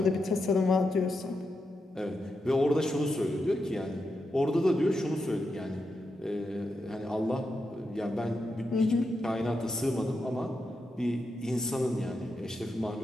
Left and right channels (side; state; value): both; normal; correlation 0.86